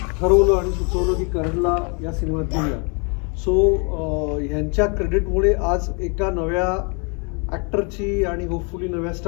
ठरवलं आणि सुचवलं की करणला या सिनेमात घेऊया. सो ह्यांच्या क्रेडिटमुळे आज एका नव्या ॲक्टरची आणि होपफुली नव्या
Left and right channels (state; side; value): quieter; right; 35.1 dB